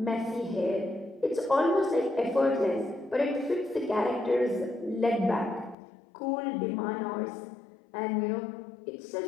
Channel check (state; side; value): drops out; right; at 5.8 s